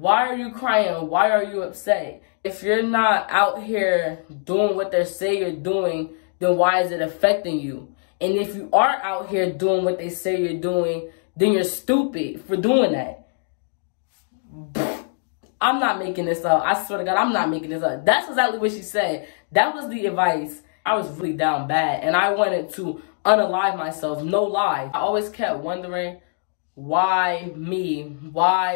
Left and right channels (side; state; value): right; silent; digital silence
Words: are you crying? Why are you upset? If you're not out here doing what they say you're doing, then why is it affecting you? And if you are out here doing what they say you're doing, then you're stupid for doing that. I'm not making this up. I swear to God, I'm not making this up. That's exactly what she said. That was the advice. I was really down bad, and I wanted to unalive myself. No lie. I always kept wondering, why me?